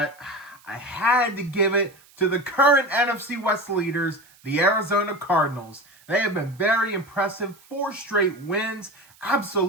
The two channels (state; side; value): noise; right; hiss, 28 dB below the sound